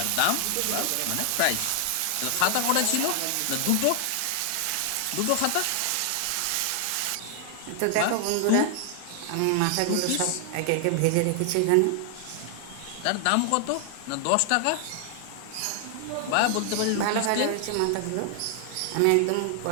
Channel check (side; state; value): both; different; correlation 0.00